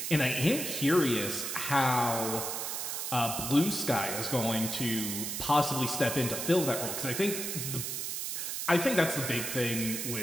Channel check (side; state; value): right; noise; hiss, 3 dB below the sound